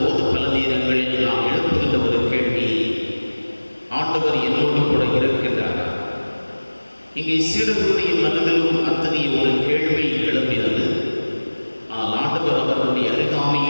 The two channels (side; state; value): both; inverted; correlation -1.00